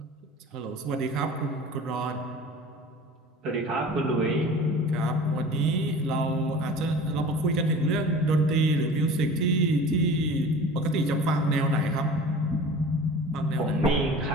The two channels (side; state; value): both; normal; correlation 0.41